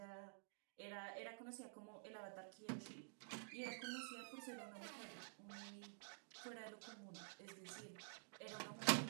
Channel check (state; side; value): silent; left; digital silence